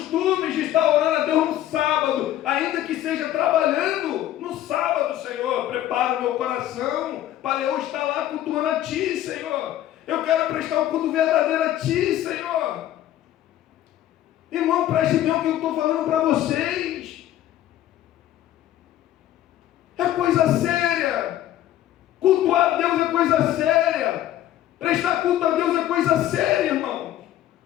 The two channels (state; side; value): quieter; right; 12.8 dB